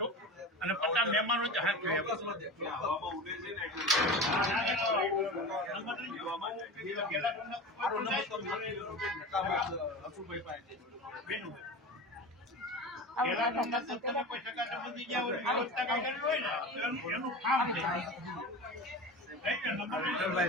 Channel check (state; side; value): normal; both; correlation 0.30